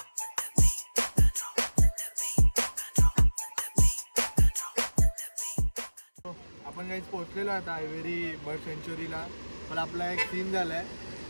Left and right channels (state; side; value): inverted; both; correlation -1.00